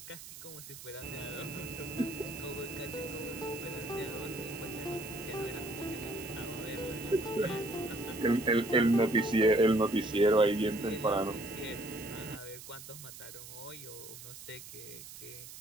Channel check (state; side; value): noise; right; hiss, 14 dB below the sound